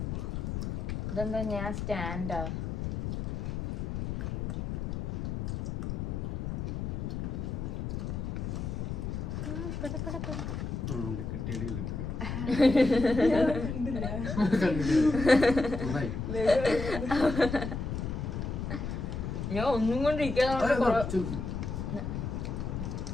ഇതെന്താ ഞാൻ സ്റ്റാൻഡാ ഞാൻ ഒന്നും കൊണ്ടിരിക്കാതെ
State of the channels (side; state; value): left; noise; rumble, 3 dB below the sound